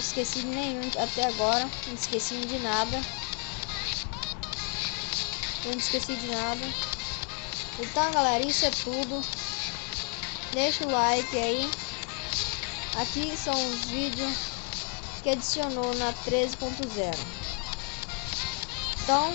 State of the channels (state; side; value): quieter; right; 38.2 dB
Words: de nenhum até agora. Não esqueci de nada. Eu não esqueci de nada. Então, galera, isso é tudo. Deixa o like aí. Aqui são os vídeos que adicionou na 13.0. Então,